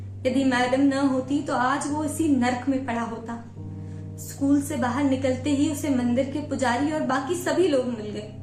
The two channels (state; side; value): identical; both; correlation 1.00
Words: यदि मैडम न होती तो आज वो इसी नर्क में पड़ा होता। स्कूल से बाहर निकलते ही उसे मंदिर के पुजारी और बाकी सभी लोग मिल गए।